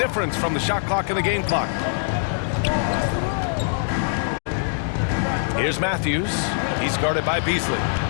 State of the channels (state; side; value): silent; right; digital silence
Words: from the shot clock and the game clock. Here's Matthews. He's guarded by Beasley.